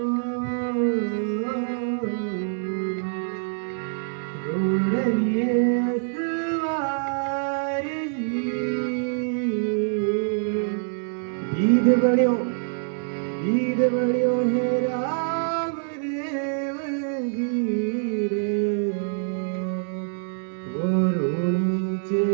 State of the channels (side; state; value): left; silent; digital silence